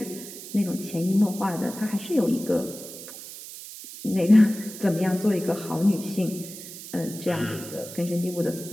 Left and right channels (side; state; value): right; noise; hiss, 13 dB below the sound